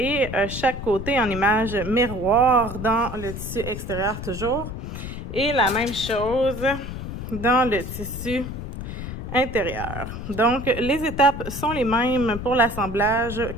chaque côté en image miroir dans le tissu extérieur toujours. Et la même chose dans le tissu intérieur. Donc, les étapes sont les mêmes pour l'assemblage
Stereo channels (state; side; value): noise; left; rumble, 7 dB below the sound